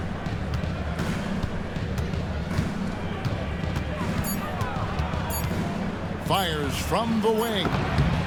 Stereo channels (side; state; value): both; identical; correlation 1.00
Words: Fires from the wing.